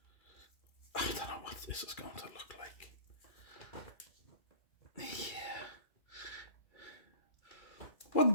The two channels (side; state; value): right; late; 2.4 ms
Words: I don't know what this is going to look like. Yeah. What